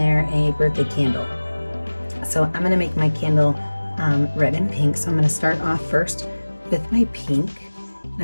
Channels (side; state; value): both; inverted; correlation -1.00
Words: a birthday candle. So I'm going to make my candle red and pink. So I'm going to start off first with my pink. And